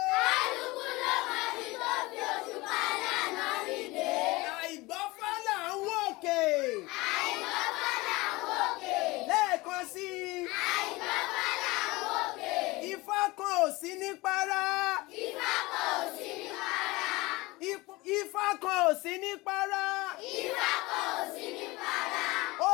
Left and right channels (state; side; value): quieter; right; 21.9 dB